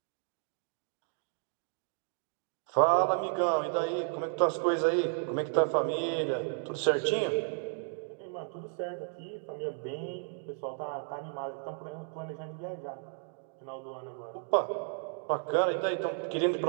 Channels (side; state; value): left; silent; 56 dB below the other